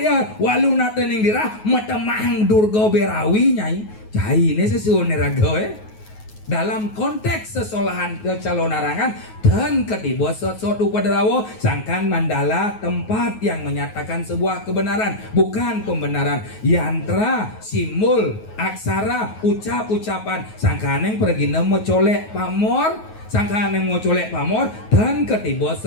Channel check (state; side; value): late; right; 9.4 ms